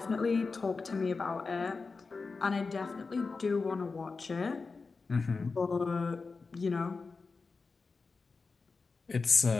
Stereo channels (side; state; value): right; quieter; 4.3 dB